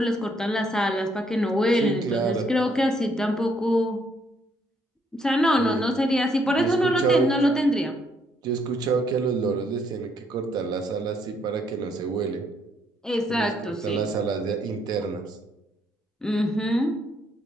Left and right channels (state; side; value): normal; both; correlation 0.71